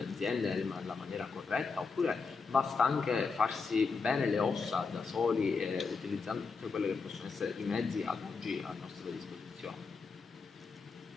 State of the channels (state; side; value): quieter; right; 4.7 dB